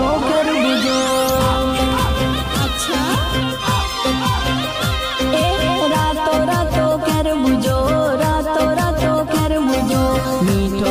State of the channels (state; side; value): identical; both; correlation 1.00